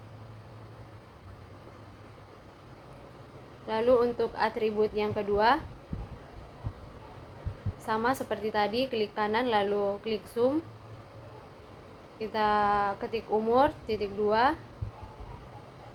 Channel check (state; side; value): identical; both; correlation 1.00